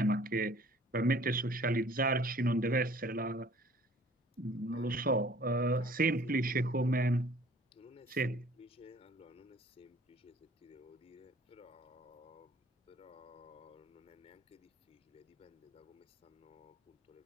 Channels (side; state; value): both; normal; correlation 0.53